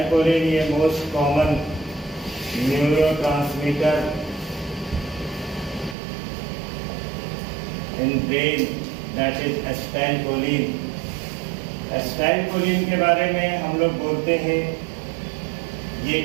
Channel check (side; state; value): left; drops out; at 6.0 s